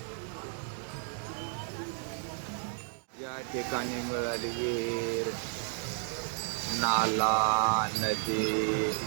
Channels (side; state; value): left; silent; 56 dB below the other